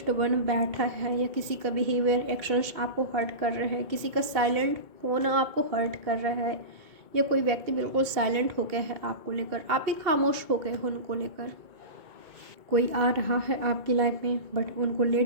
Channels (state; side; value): late; left; 2.2 ms